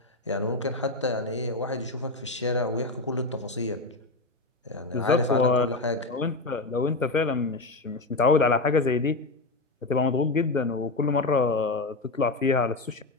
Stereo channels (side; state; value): right; quieter; 3.2 dB